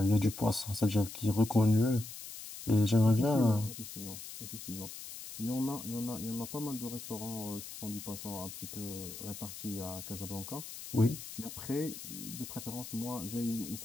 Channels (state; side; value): noise; left; hiss, 11 dB below the sound